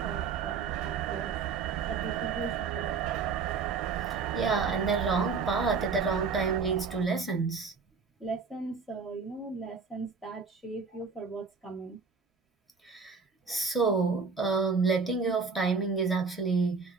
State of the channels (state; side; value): quieter; left; 5.1 dB